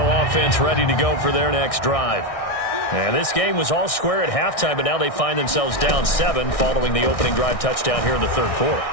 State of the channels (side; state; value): right; late; 1.6 ms